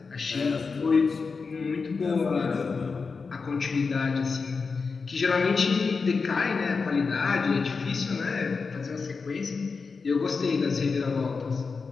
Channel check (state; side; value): quieter; right; 4.8 dB